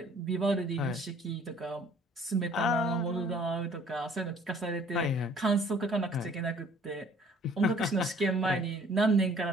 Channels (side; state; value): both; normal; correlation 0.56